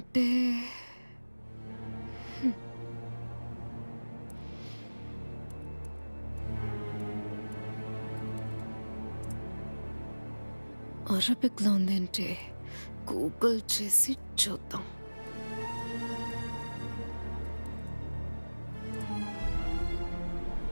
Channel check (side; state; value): both; inverted; correlation -1.00